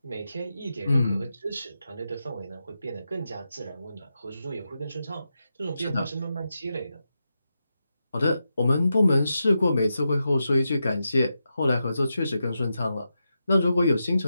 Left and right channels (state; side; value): inverted; both; correlation -0.88